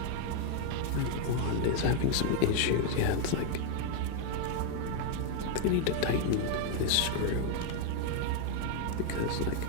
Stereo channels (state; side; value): different; both; correlation 0.01